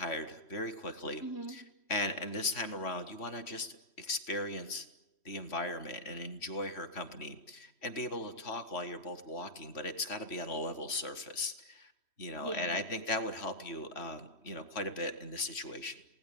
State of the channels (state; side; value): late; right; 3.1 ms